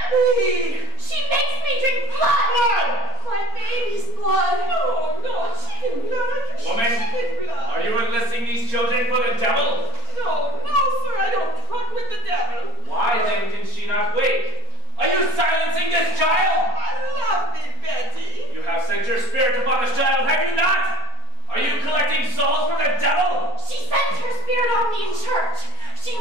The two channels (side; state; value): left; late; 4.3 ms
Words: She makes me drink blood. My baby's blood. No, chicken blood. Woman, Chicken blood. are you enlisting these children for the devil? No, sir, I don't truck with the devil. Why then can she not wake? Are you silencing this child? I love me, Betty. You have sent your spirit upon this child, have you not? Are you collecting souls for the devil? She sends her spirit on me in church. She